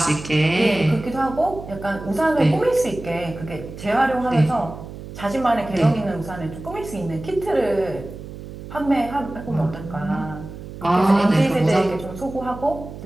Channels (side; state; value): right; noise; hum, 12 dB below the sound